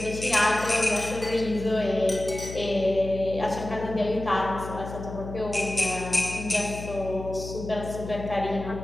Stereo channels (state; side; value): noise; left; hum, 10 dB below the sound